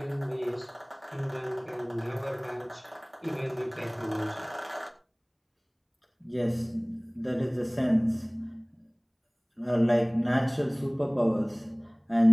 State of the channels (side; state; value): both; identical; correlation 1.00